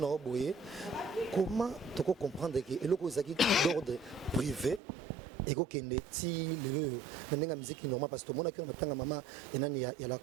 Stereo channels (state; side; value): drops out; left; at 4.8 s